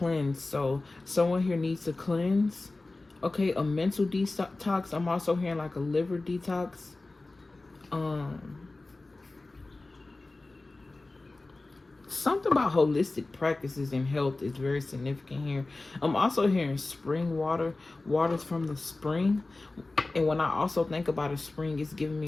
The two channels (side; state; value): right; quieter; 3.2 dB